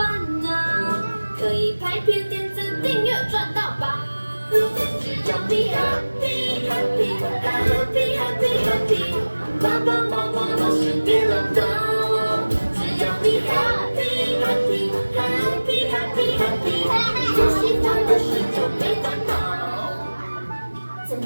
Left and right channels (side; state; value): both; inverted; correlation -1.00